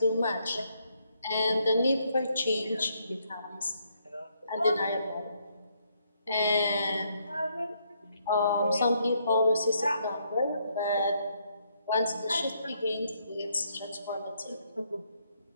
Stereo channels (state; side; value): inverted; both; correlation -0.73